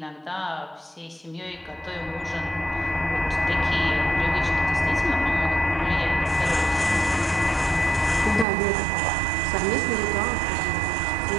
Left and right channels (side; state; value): left; drops out; at 8.5 s